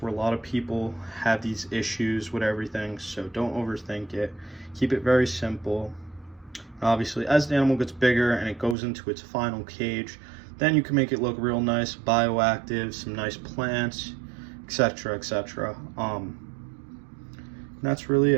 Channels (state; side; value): drops out; left; at 8.8 s